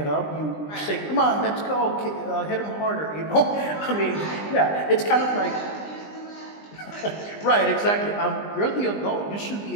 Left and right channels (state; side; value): late; right; 20 ms